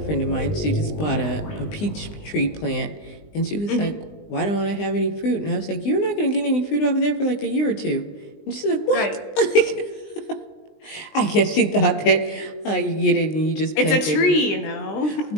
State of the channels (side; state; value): right; late; 20 ms